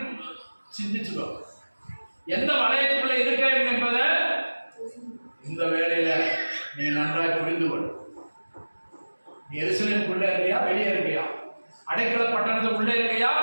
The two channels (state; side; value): inverted; both; correlation -1.00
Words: சிந்திச்சுக்கோ. எந்த வளையத்துக்குள்ள இருக்க என்பதை இந்த வேலையில நீ நன்றாக புரிந்து கொள். நீ எருசலேமுக்குள்ள இருக்கியா? வெளியே இருக்கியா? அடைக்கல பட்டணத்துக்குள்ள இருக்கியா?